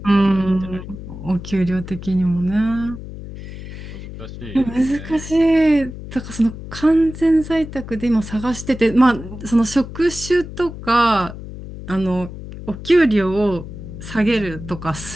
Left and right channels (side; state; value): left; noise; hum, 12 dB below the sound